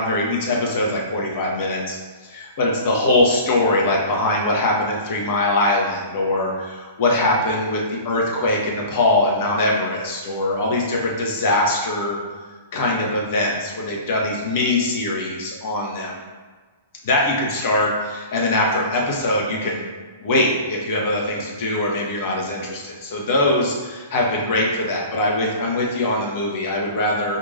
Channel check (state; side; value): inverted; both; correlation -0.39